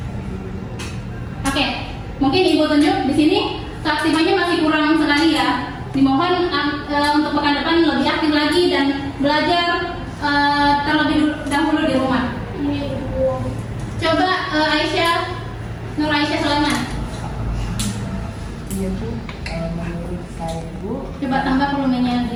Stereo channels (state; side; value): identical; both; correlation 1.00